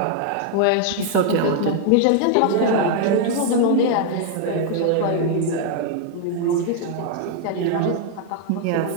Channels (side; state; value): both; different; correlation 0.00